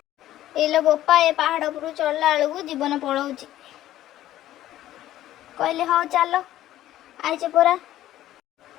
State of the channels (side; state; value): right; quieter; 13.7 dB